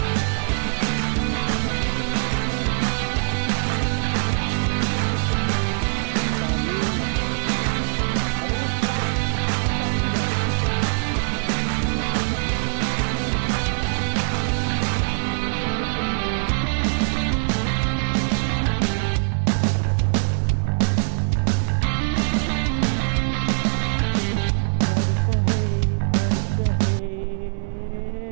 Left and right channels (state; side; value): silent; left; digital silence